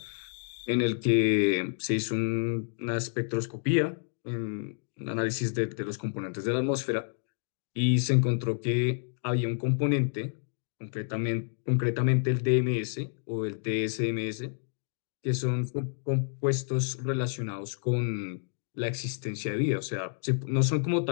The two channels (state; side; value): silent; right; digital silence